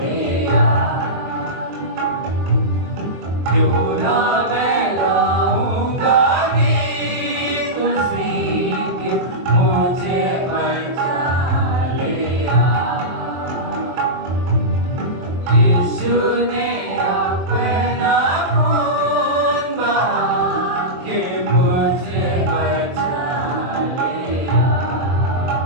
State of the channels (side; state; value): left; late; 23 ms